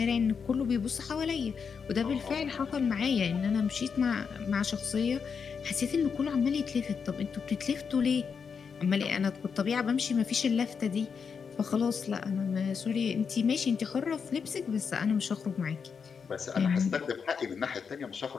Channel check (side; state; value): right; quieter; 6.1 dB